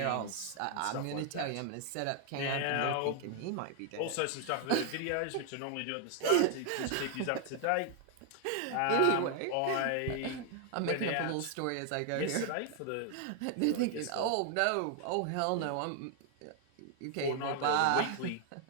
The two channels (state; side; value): different; both; correlation 0.00